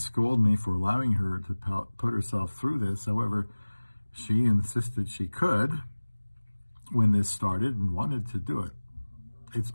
me for allowing her to put herself through this. However, she insisted she could when this started and wanted to do it. It's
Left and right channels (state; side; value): inverted; both; correlation -1.00